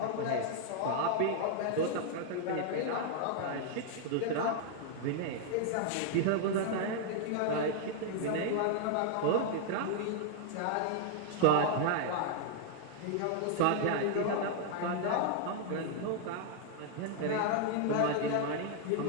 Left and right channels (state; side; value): different; both; correlation 0.00